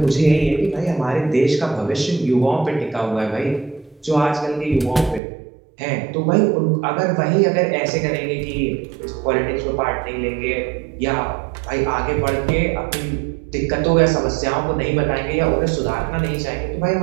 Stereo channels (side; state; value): left; drops out; at 5.2 s